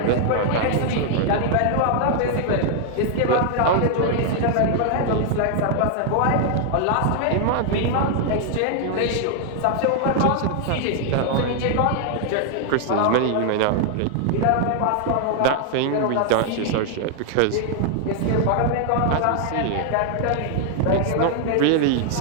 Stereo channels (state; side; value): different; both; correlation 0.00